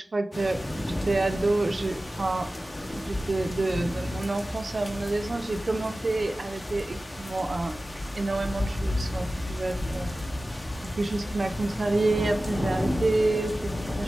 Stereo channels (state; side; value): normal; both; correlation 0.96